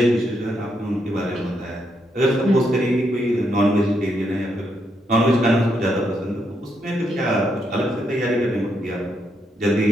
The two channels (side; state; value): both; normal; correlation 0.78